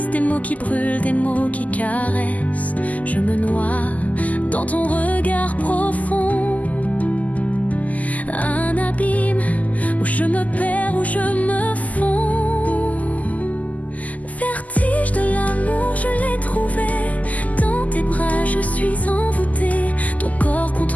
des mots qui brûlent, des mots qui caressent. Je me noie dans ton regard profond. Un abîme où je me perds, où je me fonds. Vertige de l'amour, je l'ai trouvé. Dans tes bras, je suis envoûtée. Ton corps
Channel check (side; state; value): right; late; 0.076 ms